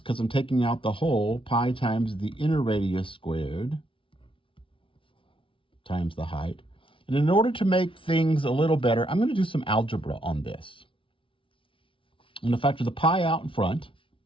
I'm taking out the whole, pi times the inner radius squared times the height. And in order to make things a little better, I'm going to do some algebra on this. I'm going to factor the pi out in front.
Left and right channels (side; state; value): right; late; 0.25 ms